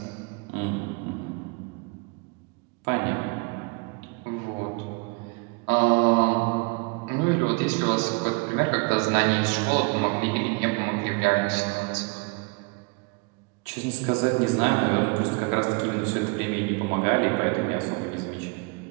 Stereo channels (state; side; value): quieter; left; 30.6 dB